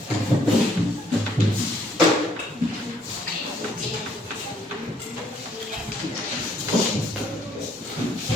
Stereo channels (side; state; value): both; normal; correlation 0.66